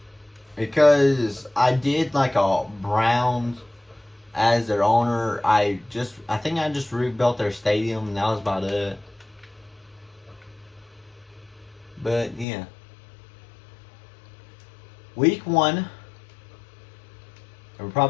Because I did like a Browns as their owner. I think I just rebuilt their stadium and that was about it. But yeah. Week 1. We're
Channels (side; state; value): right; drops out; at 12.5 s